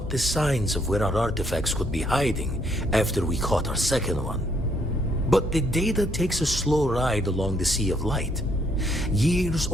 the signs of where our artifacts could be hiding after we caught our second one. But the data takes a slow ride along the Sea of Light. Years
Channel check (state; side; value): normal; both; correlation 0.70